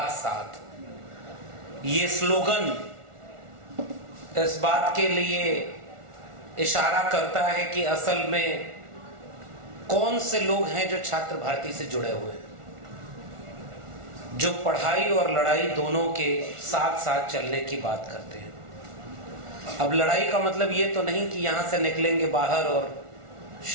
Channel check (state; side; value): late; left; 1.4 ms